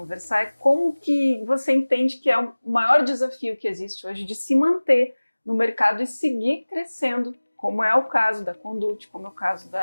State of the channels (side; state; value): both; inverted; correlation -1.00